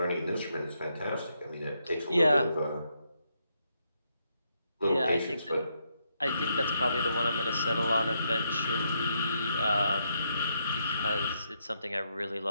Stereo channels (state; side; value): inverted; both; correlation -0.78